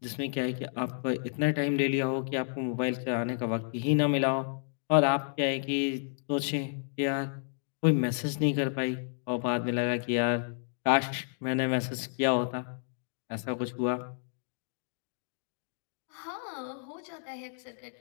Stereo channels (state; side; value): silent; right; digital silence